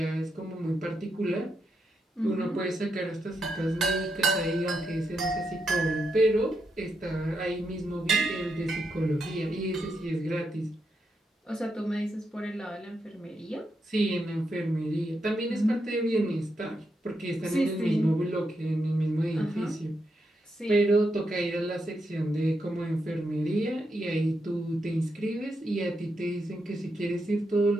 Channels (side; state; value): both; normal; correlation 0.83